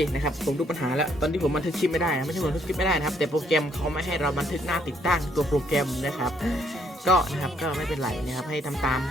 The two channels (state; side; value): normal; both; correlation 0.69